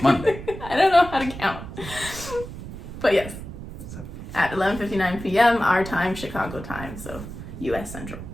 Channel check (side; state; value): right; noise; rumble, 11 dB below the sound